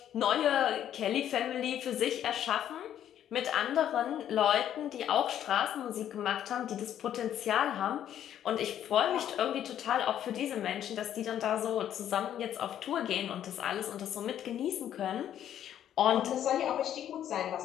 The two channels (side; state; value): right; quieter; 10.6 dB